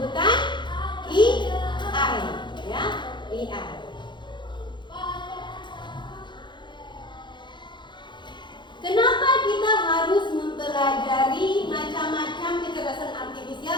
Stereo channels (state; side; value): late; right; 0.22 ms